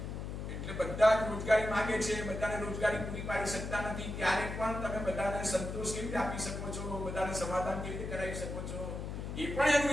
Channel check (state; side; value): noise; left; hum, 6 dB below the sound